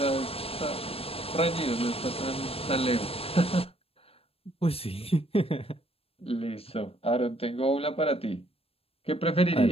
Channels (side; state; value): right; late; 0.28 ms